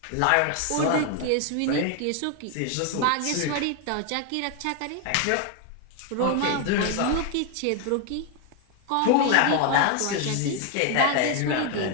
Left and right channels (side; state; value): both; different; correlation 0.01